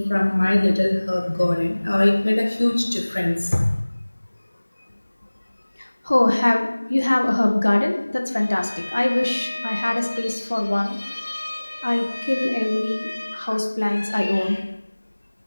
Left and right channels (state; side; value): inverted; both; correlation -1.00